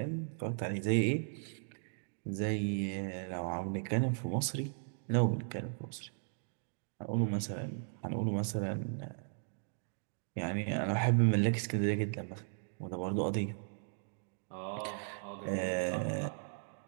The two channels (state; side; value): silent; left; digital silence